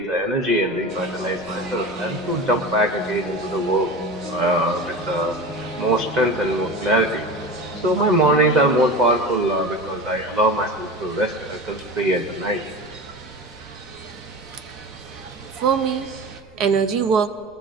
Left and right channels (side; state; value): right; noise; rumble, 27 dB below the sound